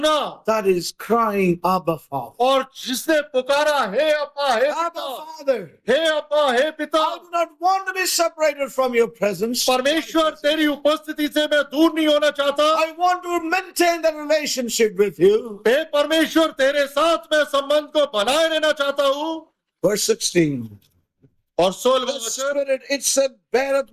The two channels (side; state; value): both; identical; correlation 1.00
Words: That is crying, Abba, Father. और जिसने पुकारा हे अब्बा हे Abba, पिता, Father, हे अब्बा हे पिता। I do not want to be separated from your presence. परमेश्वर तेरी उपस्थिति से मैं दूर नहीं होना चाहता। I want to maintain the relationship with you. हे परमेश्वर तेरे साथ मैं संबंध को बनाए रहना चाहता हूँ। Verse 16. और 16वां The वचन, Spirit, it said, beareth